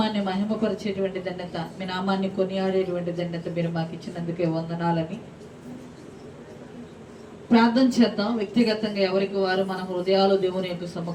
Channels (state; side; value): identical; both; correlation 1.00